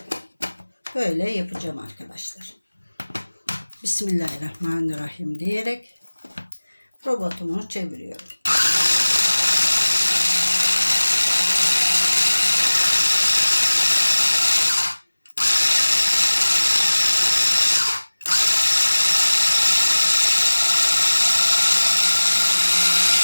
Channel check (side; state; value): both; inverted; correlation -1.00